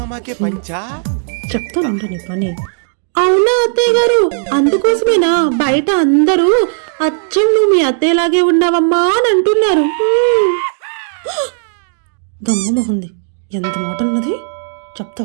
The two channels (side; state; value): left; silent; digital silence